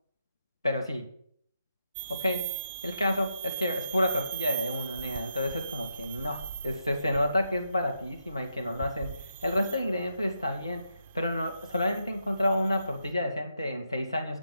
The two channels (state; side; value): inverted; both; correlation -0.82